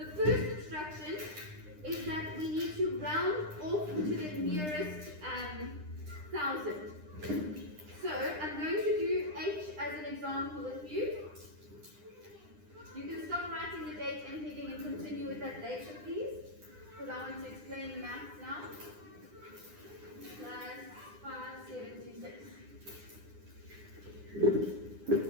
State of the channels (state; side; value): late; left; 9.9 ms